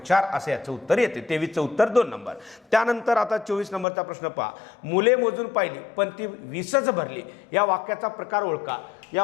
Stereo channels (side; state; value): right; drops out; at 3.9 s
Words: असं याचं उत्तर येते. 23चं उत्तर 2 नंबर. त्यानंतर आता 24 नंबरचा प्रश्न पहा. मुले मोजून पाहिली पण ती 20च भरली. या वाक्याचा प्रकार ओळखा.